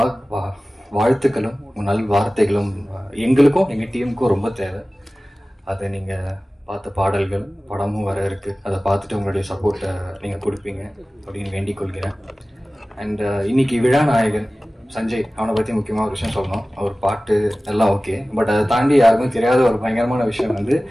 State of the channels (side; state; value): both; normal; correlation 0.97